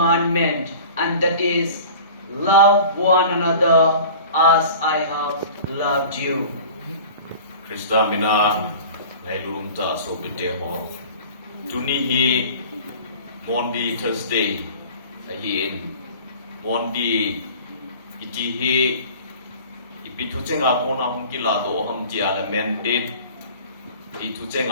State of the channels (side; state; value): both; inverted; correlation -0.42